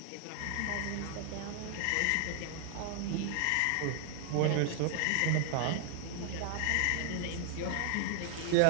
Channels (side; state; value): both; different; correlation 0.00